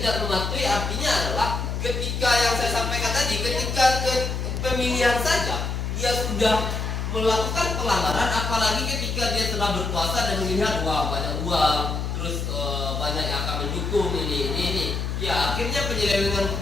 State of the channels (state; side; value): noise; left; hum, 2 dB below the sound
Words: mematuhi artinya adalah ketika yang saya sampaikan tadi, ketika pemilihan saja dia sudah melakukan pelanggaran, apalagi ketika dia telah berkuasa dan melihat wah banyak uang, terus banyak yang akan mendukung ini. Ya akhirnya penyelewengan